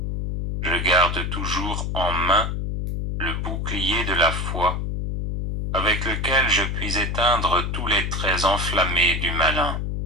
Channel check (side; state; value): left; noise; hum, 2 dB below the sound